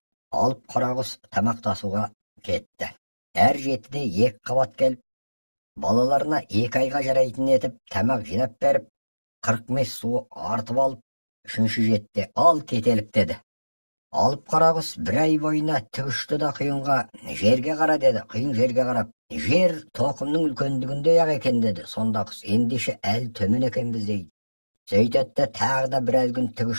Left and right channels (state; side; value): inverted; both; correlation -1.00